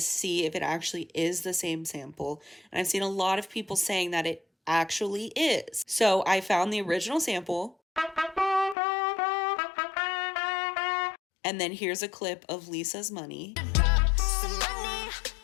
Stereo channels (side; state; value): right; drops out; at 8.8 s